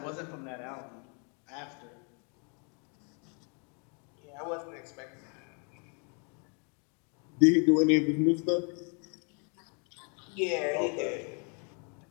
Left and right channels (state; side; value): quieter; right; 37.2 dB